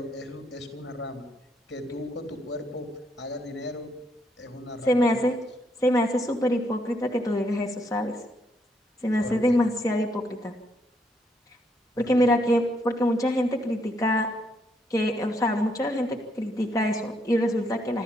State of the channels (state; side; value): normal; both; correlation 0.75